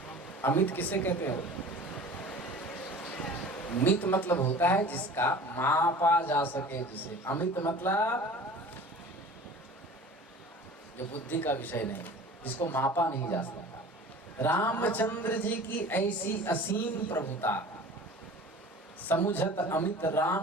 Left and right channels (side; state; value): both; normal; correlation 0.42